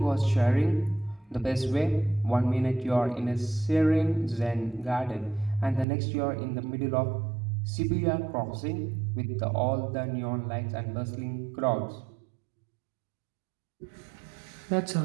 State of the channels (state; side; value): drops out; left; at 5.9 s